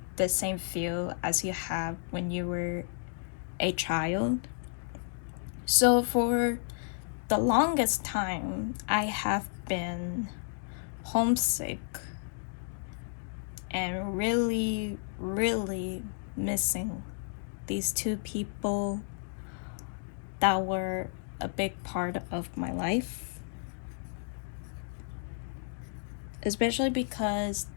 the same feel as you have when you were a child. So for the longest time, I have been homesick and really, really missing these two people that were a big part of my life. Especially because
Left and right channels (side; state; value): right; silent; digital silence